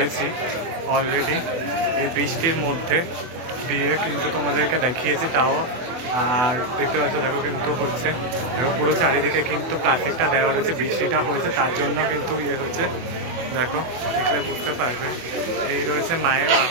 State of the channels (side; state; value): left; late; 24 ms